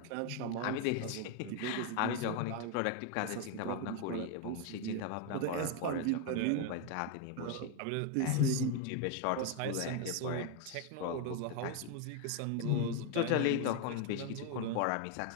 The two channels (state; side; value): different; both; correlation 0.01